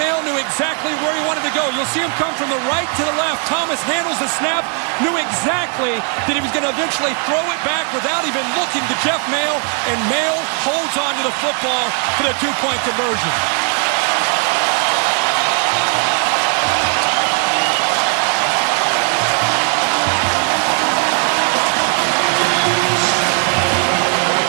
knew exactly where he wanted to go. You'll see him come from the right to the left. Thomas handles the snap. Knew exactly that he was going to eventually throw it back without even looking to Jeff Maehl. And Maehl holds on to the football for the 2-point conversion.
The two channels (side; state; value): left; quieter; 38.8 dB